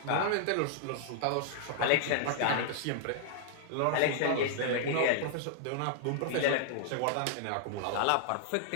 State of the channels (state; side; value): different; both; correlation -0.01